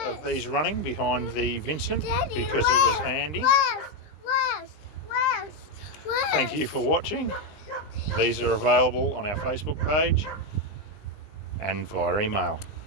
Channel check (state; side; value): late; right; 19 ms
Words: of these running behind the Vincent because it was handy. Thank you for watching. These are available on our Facebook page and via email.